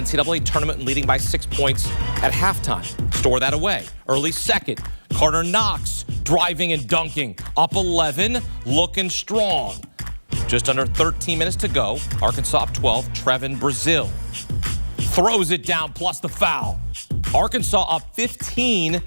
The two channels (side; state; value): both; inverted; correlation -1.00